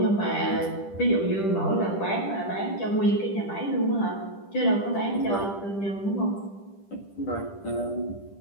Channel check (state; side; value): late; right; 10 ms